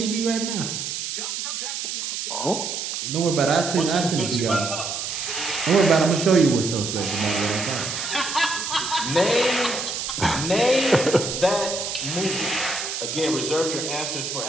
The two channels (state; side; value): noise; right; hiss, 4 dB below the sound